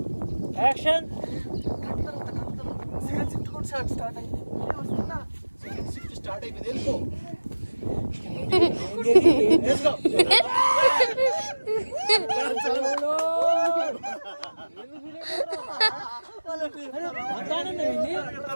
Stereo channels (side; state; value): both; inverted; correlation -1.00